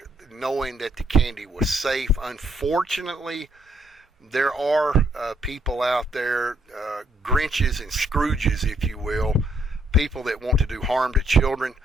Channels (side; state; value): both; normal; correlation 0.71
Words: knowing that the candy was safe. Unfortunately, there are people out there, Grinches and Scrooges, if you will, people that want to do harm to children